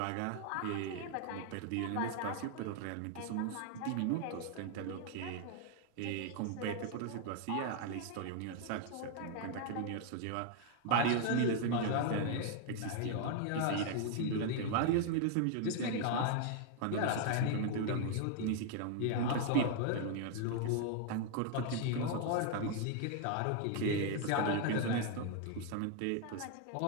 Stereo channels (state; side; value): different; both; correlation 0.00